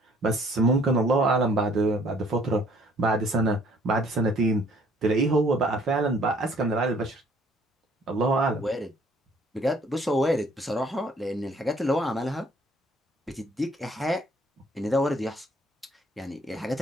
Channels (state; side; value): normal; both; correlation 0.60